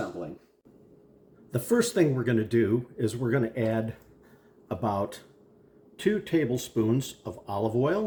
The first thing we're going to do is we're going to add about 2 tablespoons of olive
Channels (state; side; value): identical; both; correlation 1.00